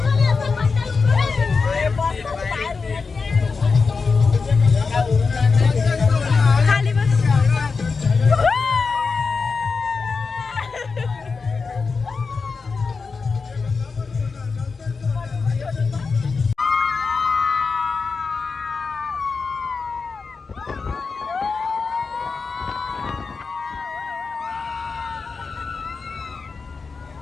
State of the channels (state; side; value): quieter; right; 4.7 dB